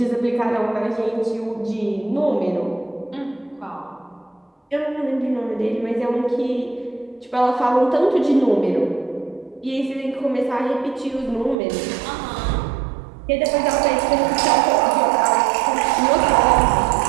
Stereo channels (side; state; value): left; drops out; at 11.6 s